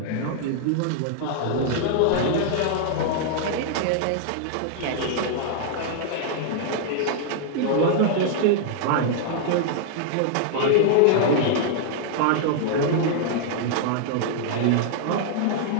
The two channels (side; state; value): both; different; correlation -0.01